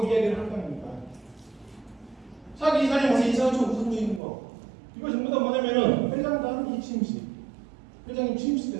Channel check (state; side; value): drops out; left; at 4.2 s